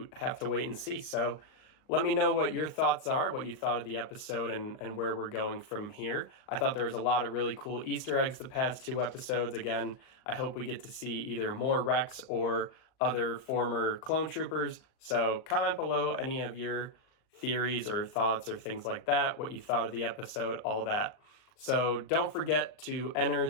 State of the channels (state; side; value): late; right; 38 ms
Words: wait and see. So let me know what your thoughts are, what you thought of the episode, and where we're going from here. I thought there was a lot of really cool Easter eggs the past 2 episodes. Again, I hope we get to see either more Rex or other former clone troopers. So comment below any of your theories or thoughts or things like that, what you thought of the episode, all that. So don't forget to enter